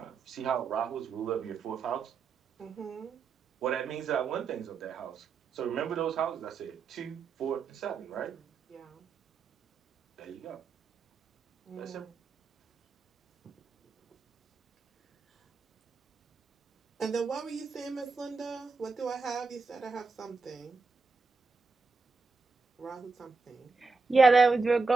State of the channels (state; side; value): quieter; left; 4.4 dB